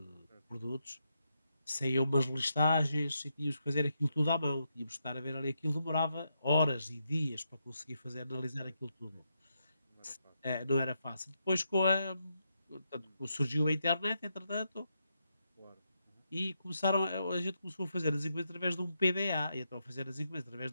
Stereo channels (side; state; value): both; inverted; correlation -0.82